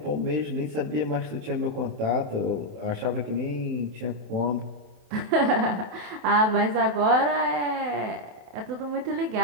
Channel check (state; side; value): late; left; 28 ms